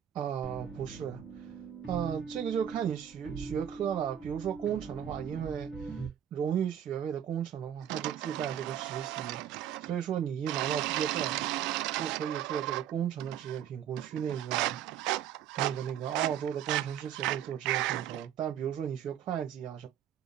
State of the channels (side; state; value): left; quieter; 9.8 dB